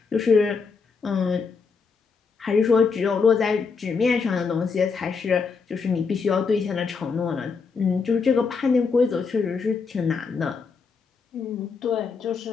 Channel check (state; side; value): quieter; right; 5.2 dB